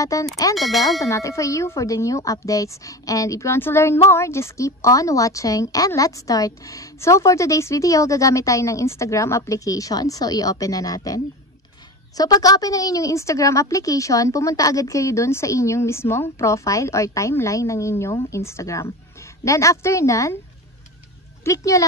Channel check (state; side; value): normal; both; correlation 0.28